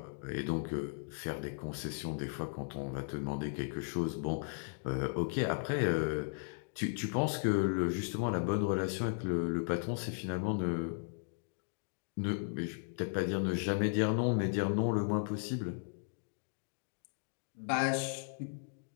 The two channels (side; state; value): right; silent; digital silence